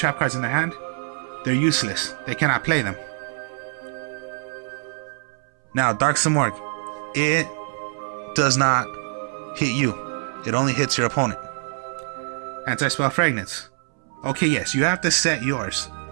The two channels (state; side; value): silent; left; 62 dB below the other